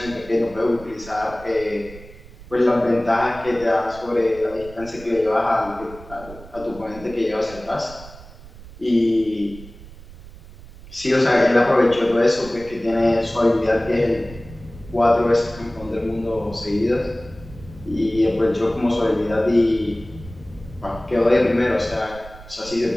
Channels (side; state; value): right; noise; rumble, 18 dB below the sound